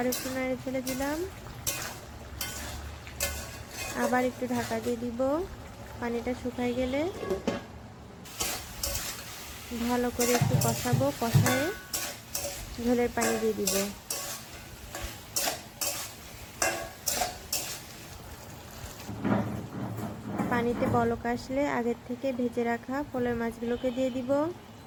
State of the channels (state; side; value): identical; both; correlation 1.00